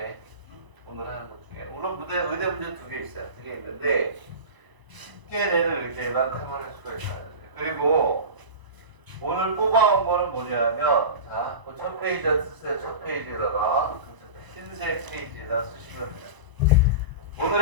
페이지에 쓰세요. 첫 페이지에다가 흰색 페이지에다 쓰시면 돼요.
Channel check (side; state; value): left; late; 1.0 ms